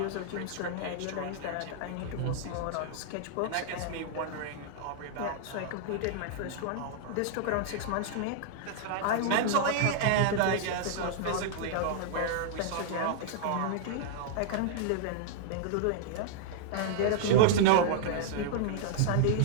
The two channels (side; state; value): both; different; correlation -0.01